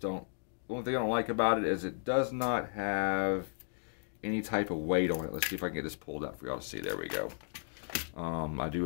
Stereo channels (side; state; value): right; silent; digital silence